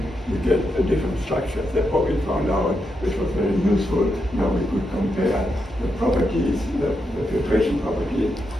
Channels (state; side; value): normal; both; correlation 0.84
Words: you get a different structure. That's what we found out, which was very useful. Now we could compare the properties, the filtration properties,